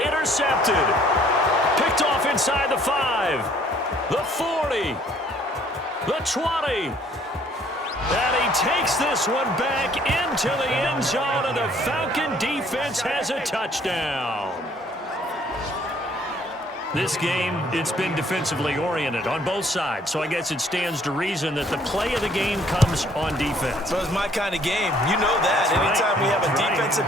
Picked off inside the 5. The 40. The 20. And he takes this one back into the end zone, and the Falcon defense has a touchdown. This game, it's been defensively oriented on both sides, so I guess it stands to reason that the play of the game comes on defense. So it's my kind of game. You know that. Anytime we have a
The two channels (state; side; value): normal; both; correlation 0.61